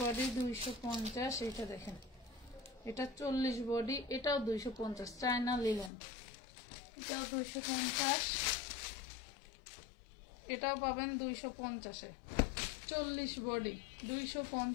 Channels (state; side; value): drops out; right; at 5.9 s